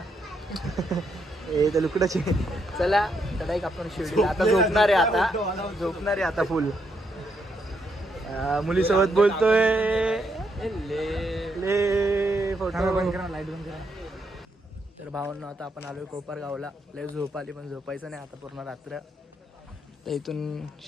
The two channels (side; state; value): both; normal; correlation 0.77